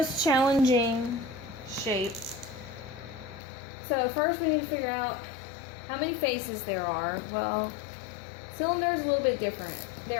challenging shape. So first we need to figure out how many faces there are. Well, cylinder is a little bit different.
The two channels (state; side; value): drops out; right; at 3.4 s